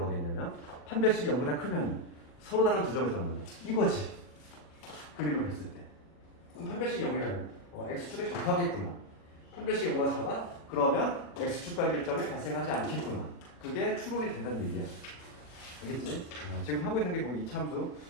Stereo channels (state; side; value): late; right; 40 ms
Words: 돼 있냐면 판별식이 0보다 크면 서로 다른 두 점에서 만난다. 이거지. 그림을 봤을 때. 그럼 판별식이 0이라면 x축에 접하겠구나. 판별식이 0보다 작아? 그러면 x축과의 교점이 발생하지 않겠구나. 그게 추론이 된다는 얘기야. 알겠지? 지금 하고 있는 게 거기 이차함수